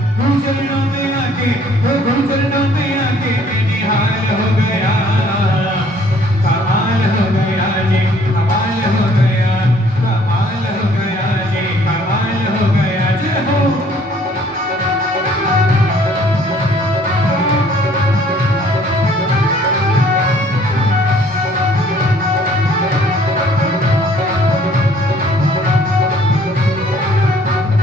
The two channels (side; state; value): both; normal; correlation 0.59